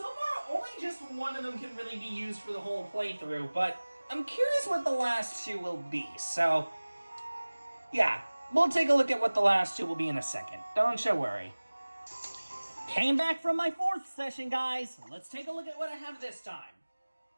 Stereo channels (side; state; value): both; inverted; correlation -1.00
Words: far, only just one of them can really be used for the whole playthrough, but I'm curious what the last 2 will be, so yeah, we'll take a look at what the last 2 will be in a second. Don't you worry. Came back from my 4th session, guys. Let's take a look at what I have this time.